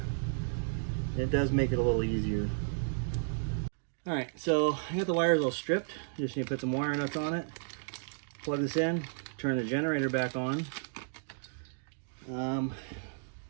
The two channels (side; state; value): left; silent; digital silence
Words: it does make it a little easier. All right, so I got the wires all stripped. Just need to put some wire nuts on it, plug this in, turn the generator back on, and